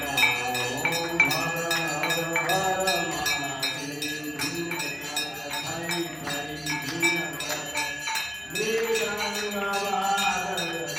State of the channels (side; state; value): both; identical; correlation 1.00